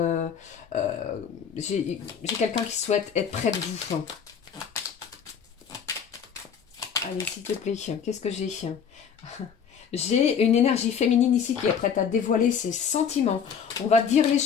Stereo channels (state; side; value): quieter; right; 7.2 dB